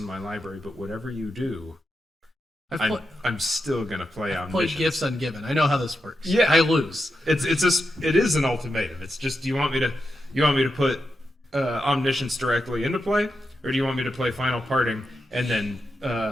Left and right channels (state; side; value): normal; both; correlation 0.87